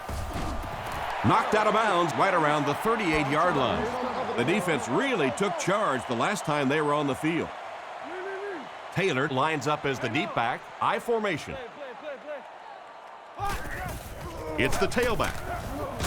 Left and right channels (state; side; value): identical; both; correlation 1.00